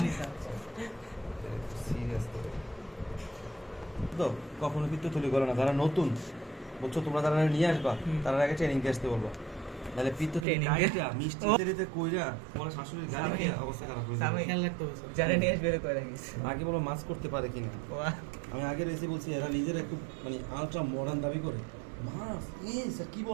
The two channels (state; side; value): drops out; left; at 10.5 s